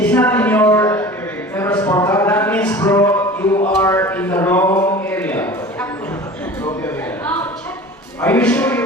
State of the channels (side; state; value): both; normal; correlation 0.39